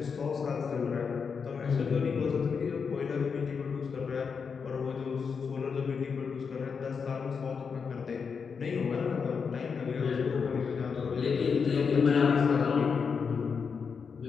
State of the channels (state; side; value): quieter; right; 5.8 dB